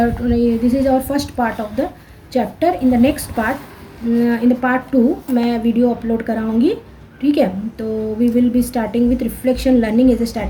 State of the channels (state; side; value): identical; both; correlation 1.00